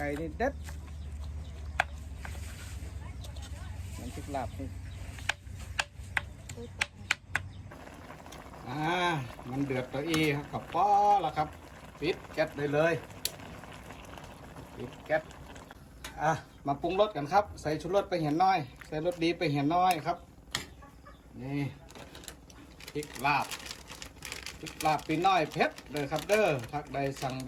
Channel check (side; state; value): both; identical; correlation 1.00